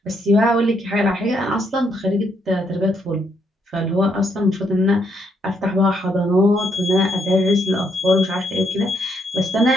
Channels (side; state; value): both; normal; correlation 0.74